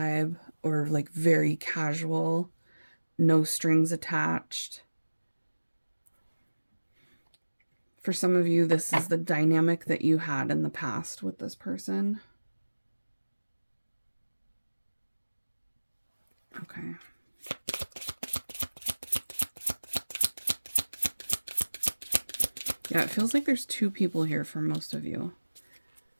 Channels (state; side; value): inverted; both; correlation -1.00